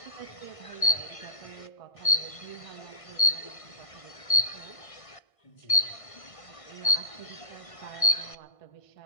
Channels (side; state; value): right; late; 1.5 ms